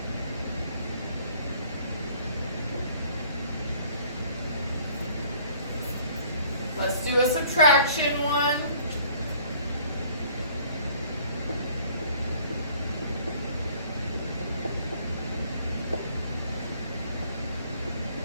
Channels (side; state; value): both; inverted; correlation -0.56